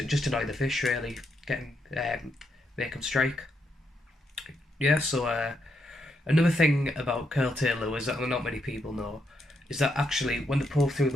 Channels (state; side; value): normal; both; correlation 0.79